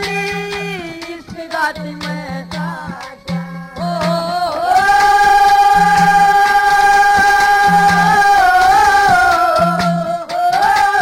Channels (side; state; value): both; identical; correlation 1.00